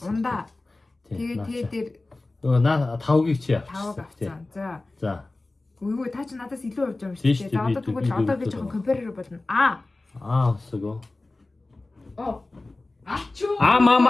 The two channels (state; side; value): quieter; right; 3.1 dB